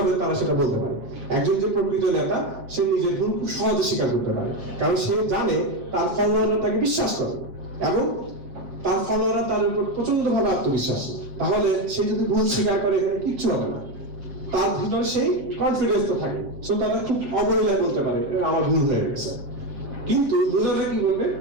তারা সেটা বলতে পারে। একজন যে প্রকৃত নেতা সে নিজের ভুল খুব সহজে স্বীকার করতে পারে, কারণ সে জানে তার ফলোয়াররা তাকে বিশ্বাস করে এবং তার ফলোয়াররা তার উপর প্রচন্ড ভাবে আত্মবিশ্বাস। তাহলে সে যদি ভুল স্বীকার করে এখানে কিচ্ছু হবে না, তার ভিতরে সেই কনফিডেন্স তো থাকে। সো তারা খুব অবহেলায় বলতে পারে আমার ভুল হয়ে গেছে। কিন্তু লুজাররা কি বলবে?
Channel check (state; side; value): late; left; 7.5 ms